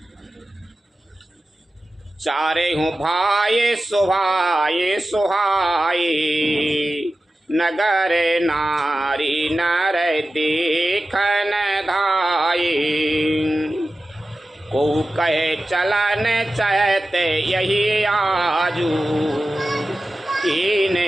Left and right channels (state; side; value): normal; both; correlation 0.94